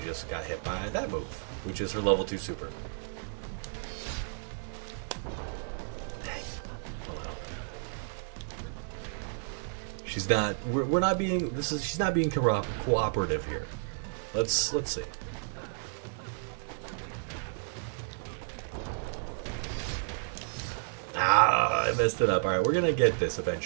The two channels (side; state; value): left; silent; digital silence